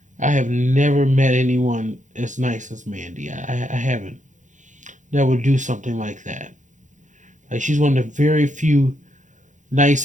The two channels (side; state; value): left; late; 0.36 ms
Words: I have never met anyone as nice as Mandy. I haven't. That would do something like that. Like, she's one of the very few